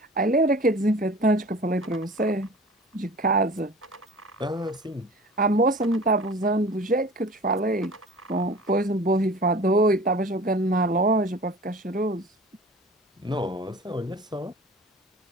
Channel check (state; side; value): normal; both; correlation 0.41